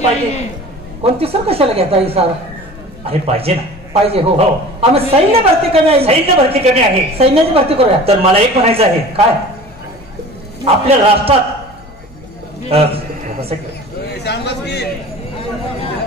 पाहिजे? कोणती सर कशाला घेता ही सर? अरे पाहिजे ना. पाहिजे. हो आम्ही सैन्य भरती कमी आहे. सैन्य भरती कमी आहे. सैन्याची भरती करूया. तर मला एक म्हणायचं आहे. काय? आपल्या राष्ट्रात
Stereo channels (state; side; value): noise; left; hum, 23 dB below the sound